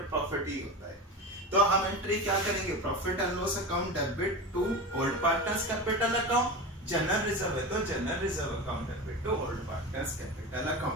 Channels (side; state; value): both; normal; correlation 0.26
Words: प्रॉफिट ही होता है। तो हम एंट्री क्या करेंगे, profit and loss account debit to old partners capital account. General reserve है तो general reserve account debit to old partners capital